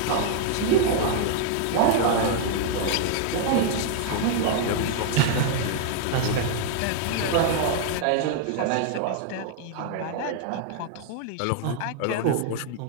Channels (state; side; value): different; both; correlation 0.00